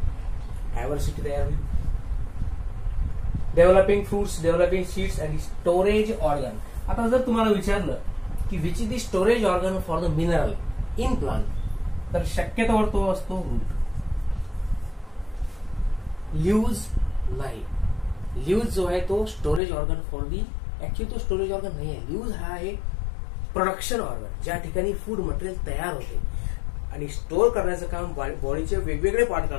डायव्हर्सिटी तयार होईल. डेव्हलपिंग फ्रुट्स, डेव्हलपिंग सीड्स आणि स्टोरेज ऑर्गन. आता जर तुम्हाला विचारलं की which is the storage organ for the mineral in plant, तर शक्यतोवर तो असतो रूट. लीव्स नाही. लीव्स जो आहे तो storage organ for the, actually तो स्टोरेज ऑर्गन नाही आहे. लीव्स हा आहे प्रोडक्शन ऑर्गन, ज्या ठिकाणी फूड मटेरियल तयार होते आणि स्टोअर करण्याचं काम बॉडीचे वेगवेगळे पार्ट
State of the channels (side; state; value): right; drops out; at 19.6 s